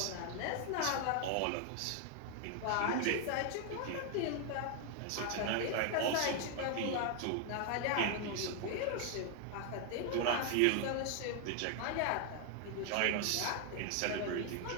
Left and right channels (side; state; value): both; different; correlation 0.00